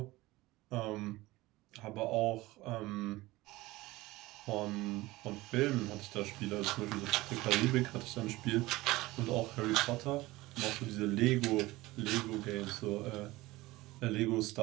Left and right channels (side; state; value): left; quieter; 19.4 dB